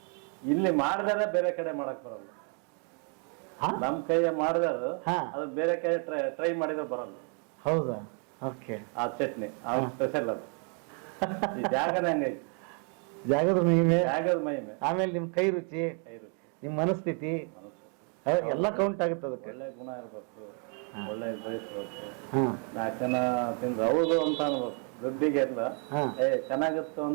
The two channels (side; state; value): left; quieter; 39.5 dB